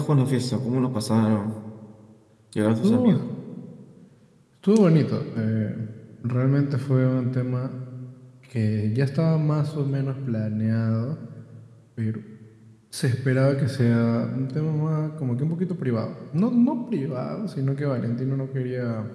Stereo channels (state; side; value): identical; both; correlation 1.00